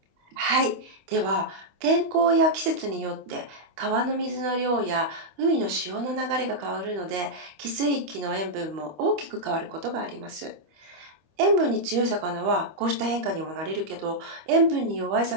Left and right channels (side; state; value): left; late; 25 ms